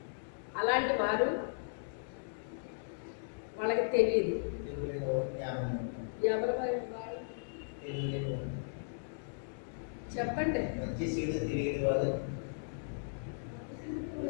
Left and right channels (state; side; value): silent; right; digital silence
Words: అలాంటి వారు వాళ్ళకి తెలియదు. ఎవరు చెప్పండి?